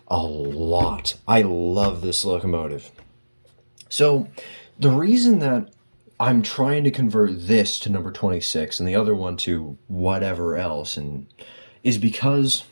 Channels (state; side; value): inverted; both; correlation -1.00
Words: a lot. I love this locomotive. So the reason that I'm trying to convert this to number 26 and the other one to whatever else and is because